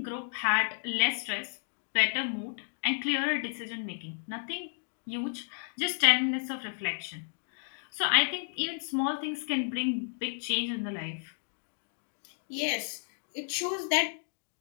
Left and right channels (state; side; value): silent; right; digital silence